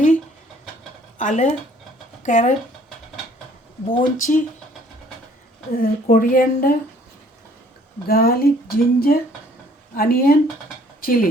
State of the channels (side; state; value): both; normal; correlation 0.59